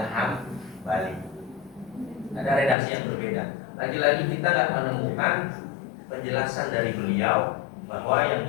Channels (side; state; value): right; drops out; at 2.8 s